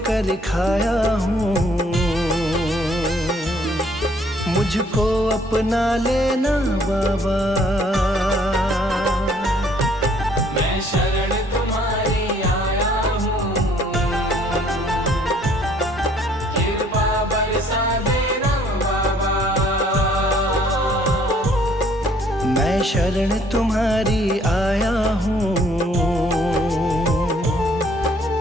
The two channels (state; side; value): normal; both; correlation 0.62